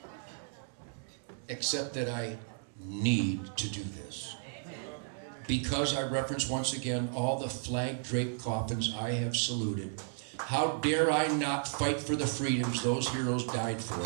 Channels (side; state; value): left; silent; digital silence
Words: Except that I need to do this. Because I reference once again all the flag-draped coffins I have saluted. How dare I not fight for the freedoms those heroes died for